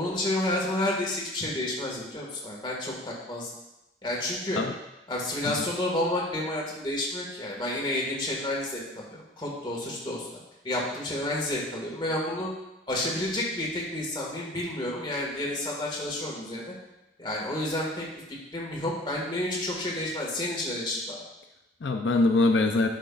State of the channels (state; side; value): normal; both; correlation 0.46